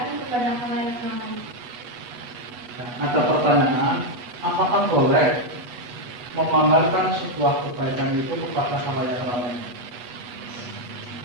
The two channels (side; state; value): left; late; 8.2 ms